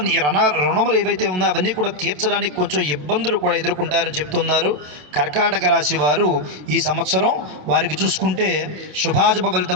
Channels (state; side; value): late; left; 27 ms